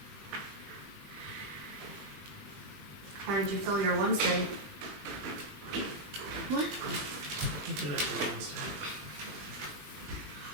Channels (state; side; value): late; left; 20 ms